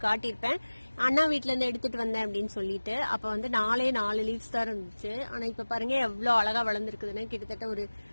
காட்டியிருப்பேன், அண்ணா வீட்டுல இருந்து எடுத்துட்டு வந்தேன் அப்படின்னு சொல்லிட்டு. அப்ப வந்து 4 லீவ்ஸ் தான் இருந்துச்சு. ஆனா இப்ப பாருங்க எவ்வளவு அழகா வளர்ந்துருக்குதுன்னு. கிட்டத்தட்ட ஒரு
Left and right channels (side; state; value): both; inverted; correlation -1.00